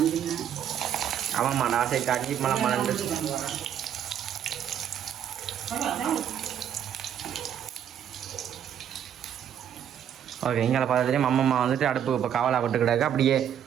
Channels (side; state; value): left; quieter; 9.4 dB